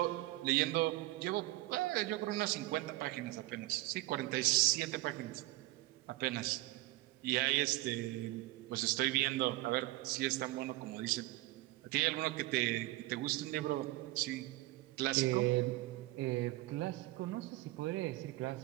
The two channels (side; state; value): left; quieter; 18.7 dB